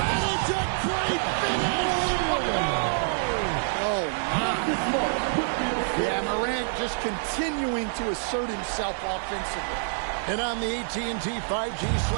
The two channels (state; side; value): silent; left; digital silence